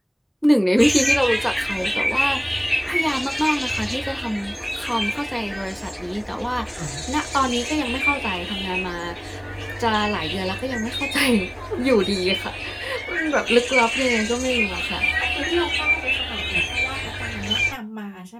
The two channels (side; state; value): both; identical; correlation 1.00